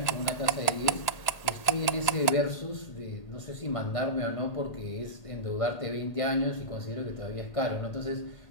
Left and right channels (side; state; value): right; late; 1.8 ms